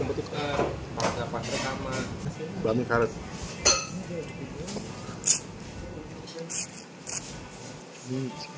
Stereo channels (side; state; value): both; identical; correlation 1.00